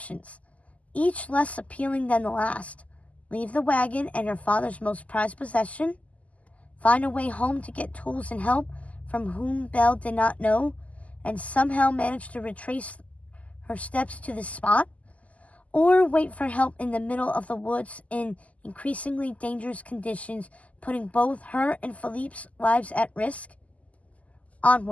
each less appealing than the last. Leave the wagon and her father's most prized possession, find a way home to get tools and help from whom Belle did not know, and somehow manage to retrace her steps to the spot, or wait for help in the middle of the woods in increasingly dangerous conditions, putting both her and Philippe's lives at risk.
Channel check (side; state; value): right; late; 0.071 ms